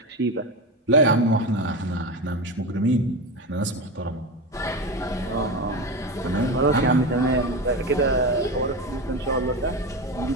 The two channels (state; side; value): normal; both; correlation 0.21